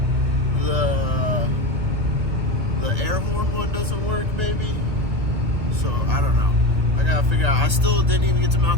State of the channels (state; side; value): late; left; 1.7 ms